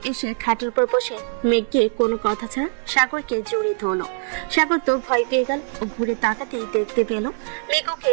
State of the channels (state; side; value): silent; left; 64 dB below the other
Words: এসে খাটের উপর বসে মেঘকে কোনো কথা ছাড়া সাগরকে জড়িয়ে ধরলো। সাগর তো ভয় পেয়ে গেল ও ঘুরে তাকাতেই দেখতে পেল মেঘ ওকে